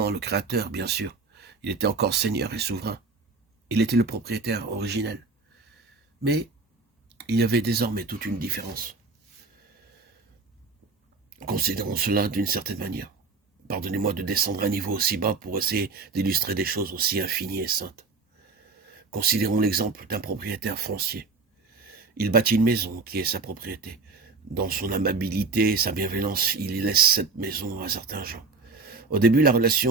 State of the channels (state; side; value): quieter; left; 4.1 dB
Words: le Créateur, bien sûr. Il était encore Seigneur et souverain. Il était le propriétaire originel. Mais il y avait désormais toute une différence. Considérons cela d'une certaine manière. Pardonnez-moi de descendre à un niveau aussi bas pour essayer d'illustrer des choses aussi infinies et saintes. Considérons l'exemple d'un propriétaire foncier. Il bâtit une maison qui est sa propriété. Dans son amabilité et sa bienveillance, il laisse cette maison à certains gens. Au début, la